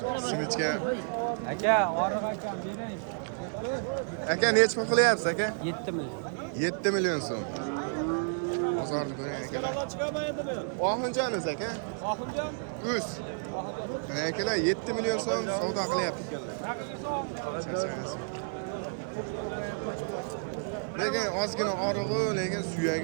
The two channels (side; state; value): left; silent; digital silence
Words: Simichka. Aka, oriq akam bering. Aka, necha pul qilyapsiz aka? 7 million. 7 million so'm. Bozorni ko'ring akalar. Chiqamaydi men. Oxunjamiz aka? Oxunjon. Uz. Mana akalar 7 million so'm savdo qilyapti ekanlar. Charchamaysiz. Lekin ozgina orig'i, lekin